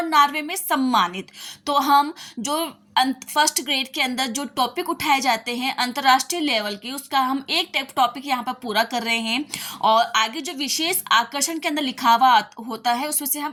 नॉर्वे में सम्मानित। तो हम जो फर्स्ट ग्रेड के अंदर जो टॉपिक उठाए जाते हैं अंतर्राष्ट्रीय लेवल की, उसका हम एक टॉपिक यहाँ पर पूरा कर रहे हैं और आगे जो विशेष आकर्षण के अंदर लिखा हुआ होता है उसमें से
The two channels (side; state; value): both; identical; correlation 1.00